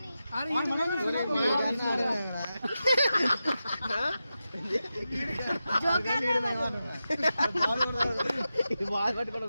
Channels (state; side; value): inverted; both; correlation -0.91